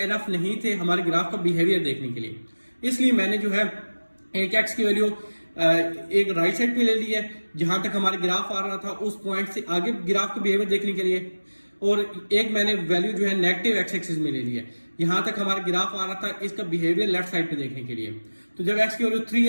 नहीं थे हमारे ग्राफ का बिहेवियर देखने के लिए, इसलिए मैंने जो है एक x की वैल्यू एक राइट साइड पे ले ली है जहां तक हमारे ग्राफ आ रहा था उस पॉइंट से आगे ग्राफ का बिहेवियर देखने के लिए, और एक मैंने वैल्यू जो है नेगेटिव एक्स एक्सिस में ले ली है यहां तक हमारा ग्राफ आ रहा था इसका बिहेवियर लेफ्ट साइड पे देखने के लिए। तो जब x की वैल्यू 3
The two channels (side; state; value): both; inverted; correlation -1.00